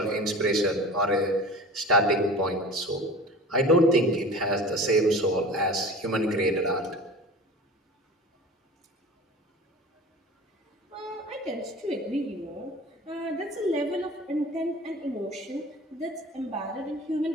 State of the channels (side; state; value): both; normal; correlation 0.38